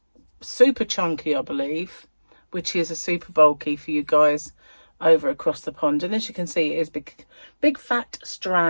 super chunky, I believe, which is a super bulky for you guys over across the pond. And as you can see, it is big fat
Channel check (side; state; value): both; inverted; correlation -1.00